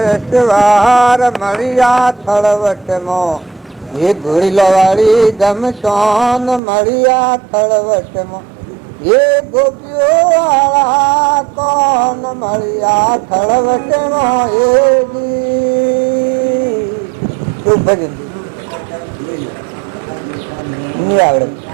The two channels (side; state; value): left; drops out; at 6.6 s